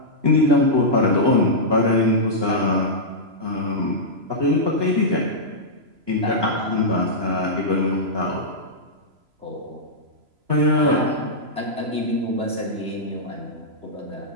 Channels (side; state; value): left; late; 3.0 ms